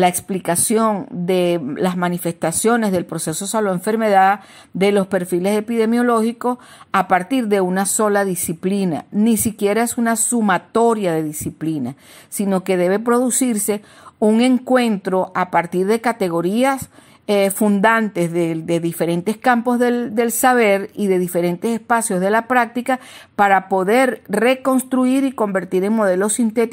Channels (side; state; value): both; identical; correlation 1.00